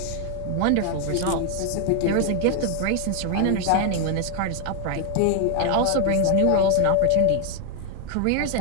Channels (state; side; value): different; both; correlation 0.00